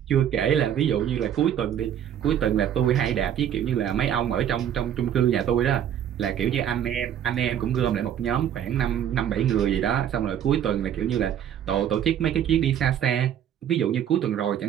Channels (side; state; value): left; quieter; 9.8 dB